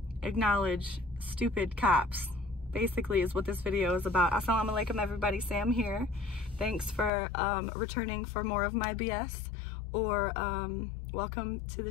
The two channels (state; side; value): drops out; right; at 7.1 s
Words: acknowledge stupid cops. Basically is what this video is about. Assalamu alaikum everybody, Sam here. Thanks for returning for more of my BS, or welcome to the